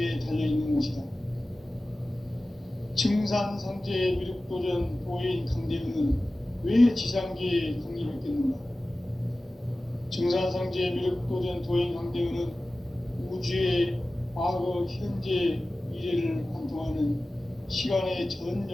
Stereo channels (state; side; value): normal; both; correlation 0.96